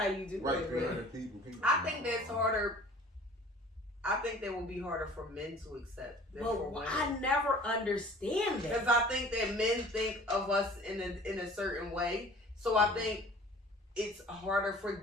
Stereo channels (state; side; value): normal; both; correlation 0.47